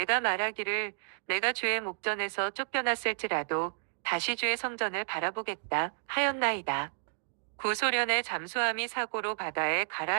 말하기를 내가 주의 목전에서 쫓겨났을지라도 다시 주의 성전을 바라보겠다 하였나이다. 구소련의 잠수함이 사고로 바다에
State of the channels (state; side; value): silent; left; digital silence